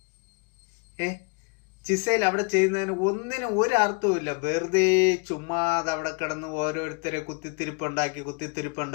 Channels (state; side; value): quieter; right; 33.9 dB